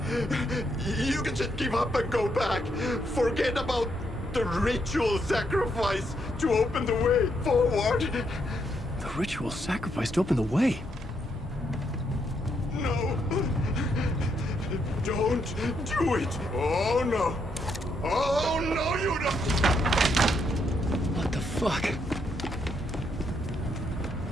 You can just give up and go back. Forget about the ritual sacrifice to open the way forward. The ritual sacrifice to open the way? No. Don't do it. Oh, no. Oh, no, you don't. What the fuck?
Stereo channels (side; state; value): both; normal; correlation 0.76